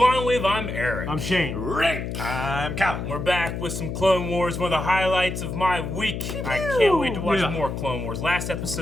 Wave, I'm Eric. I'm Shane. Rick. I'm Cal. We're back with some Clone Wars, one of the highlights of my week. I can't wait to watch more Clone Wars. Last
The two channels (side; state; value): left; noise; hum, 5 dB below the sound